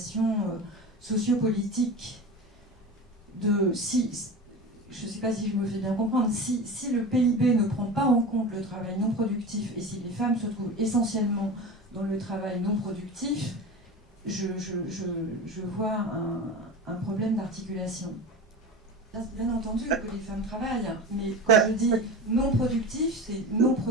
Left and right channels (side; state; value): both; normal; correlation 0.29